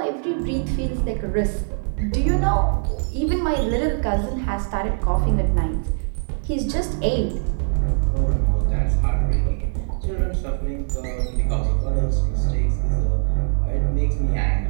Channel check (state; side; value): silent; left; 57 dB below the other